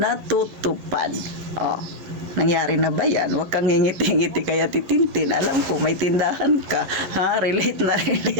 Oh, nangyari na ba yan? Huwag kang ngingiti-ngiti kaya titintin. Alam ko may tindahan ka, ha? Relate na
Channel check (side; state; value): left; late; 10 ms